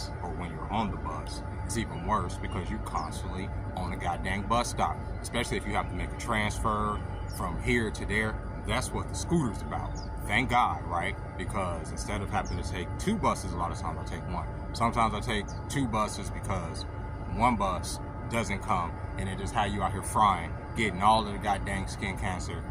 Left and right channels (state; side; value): identical; both; correlation 1.00